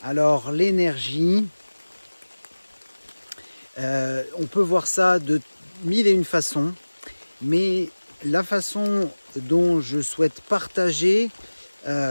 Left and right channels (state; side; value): inverted; both; correlation -1.00